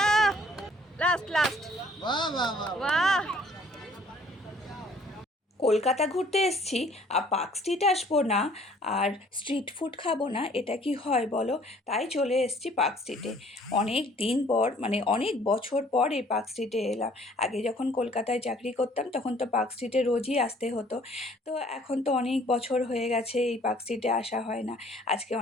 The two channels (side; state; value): both; normal; correlation 0.58